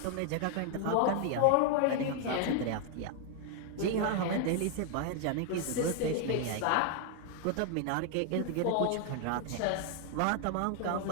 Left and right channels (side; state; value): both; different; correlation 0.00